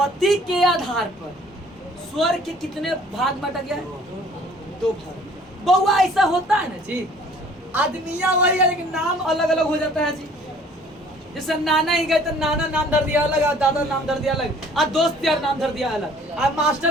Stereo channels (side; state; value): both; normal; correlation 0.54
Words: के आधार पर स्वर के कितने भाग बांटा गया है? दो भाग। बउआ ऐसा होता है ना जी, आदमिया वही है लेकिन नाम अलग अलग हो जाता है जी। जैसे नाना ही गए तो नाना नाम धर दिया अलग, दादा नाम धर दिया अलग, आ दोस्त यार नाम धर दिया अलग, आ